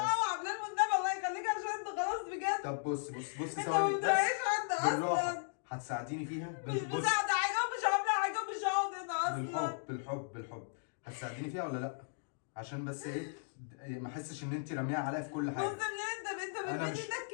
بلال والنبي الله يخليك عشان انت خلاص بجد. طب بصي انت ما ثواني بس. بتراعيش حد بالراحه. اصلا. هتساعديني فيها؟ مش مساعدة حاجة ومش عاملة حاجة ومش هقعد هنا اصلا. بالحب هتساعديني فيها ولا لا؟ عشان بس ايه ما احسش ان انت راميها عليا في كل حاجه. بص ليه انت انا بتمد مش ايدك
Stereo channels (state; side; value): silent; right; digital silence